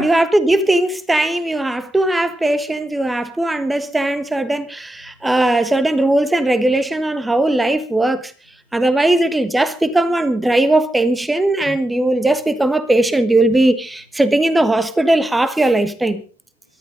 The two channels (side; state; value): both; normal; correlation 0.89